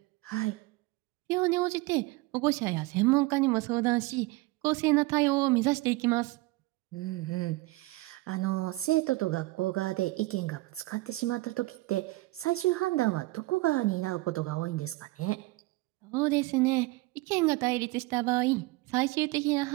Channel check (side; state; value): left; quieter; 21.0 dB